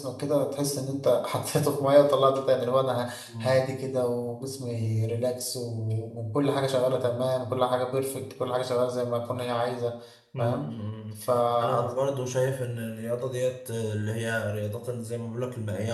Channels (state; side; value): identical; both; correlation 1.00